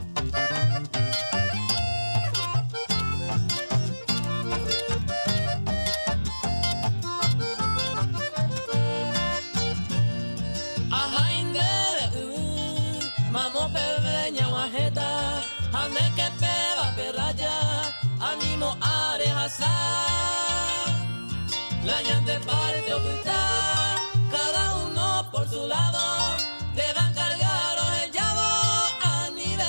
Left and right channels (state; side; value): inverted; both; correlation -1.00